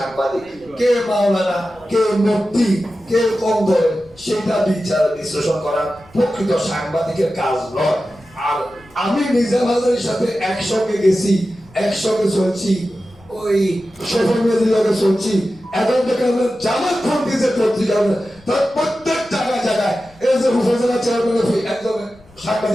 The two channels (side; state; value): left; noise; rumble, 27 dB below the sound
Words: কে মাওলানা, কে মুফতি, কে কম ধরে সেটা বিচার বিশ্লেষণ করা প্রকৃত সাংবাদিকের কাজ নয়। আর আমি নিজা বাজারের সাথে একসঙ্গে গেছি, একসঙ্গে চলছি, ওই সোশ্যাল মিডিয়াতে চলছি, এখন থেকে আমরা জামাত ফন্ডি যে পত্রিকা তার প্রত্যেক জায়গায় জায়গায় এই যে উপজেলা চেয়ারম্যান একদম